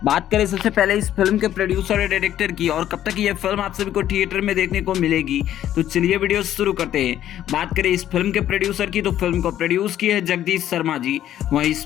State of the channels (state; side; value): quieter; right; 11.7 dB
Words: बात करें सबसे पहले इस फिल्म के प्रोड्यूसर और डायरेक्टर की और कब तक ये फिल्म आप सभी को थिएटर में देखने को मिलेगी। तो चलिए वीडियो शुरू करते हैं। बात करें इस फिल्म के प्रोड्यूसर की, तो फिल्म को प्रोड्यूस किए हैं जगदीश शर्मा जी। वहीं इस